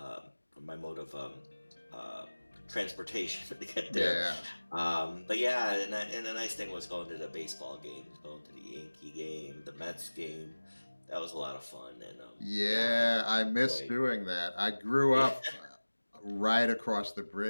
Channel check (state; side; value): inverted; both; correlation -1.00